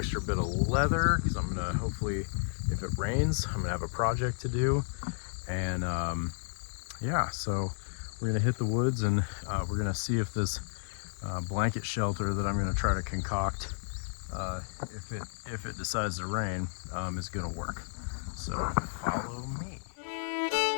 bit of leather, because I'm gonna hopefully, if it rains, I'm gonna have a project to do. And yeah, so we're gonna hit the woods, and we're gonna see if this blanket shelter that I'm gonna try to concoct, if it decides to rain, is gonna work. So follow me.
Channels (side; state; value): right; silent; 56 dB below the other